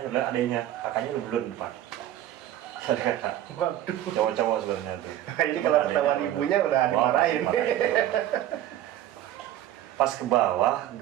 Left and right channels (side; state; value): left; quieter; 12.7 dB